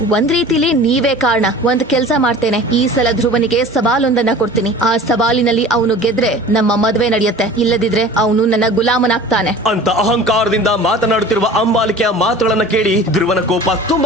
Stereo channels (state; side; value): normal; both; correlation 0.41